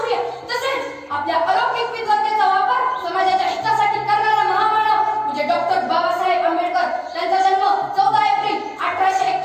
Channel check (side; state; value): both; identical; correlation 1.00